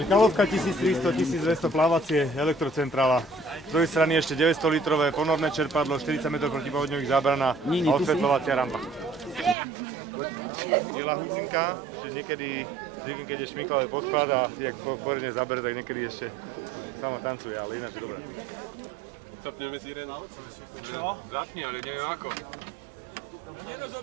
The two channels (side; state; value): left; drops out; at 9.6 s